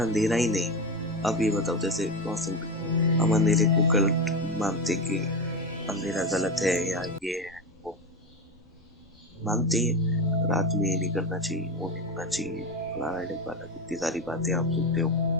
ही नहीं, अब ये बताओ, जैसे बहुत सिंपल, हम अंधेरे को गलत मानते कि अंधेरा गलत है या ये है वो मानते हैं, रात में ये नहीं करना चाहिए, वो नहीं होना चाहिए, फलाना ढिमकाना, कितनी सारी बातें आप सुनते हो।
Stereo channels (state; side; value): normal; both; correlation 0.18